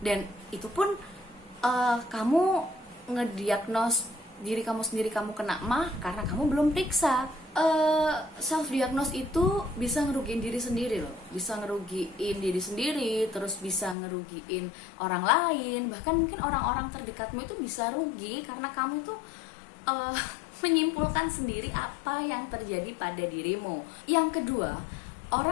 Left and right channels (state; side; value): drops out; right; at 14.0 s